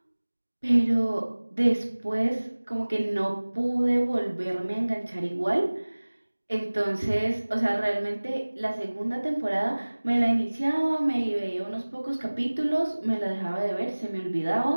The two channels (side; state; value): both; inverted; correlation -1.00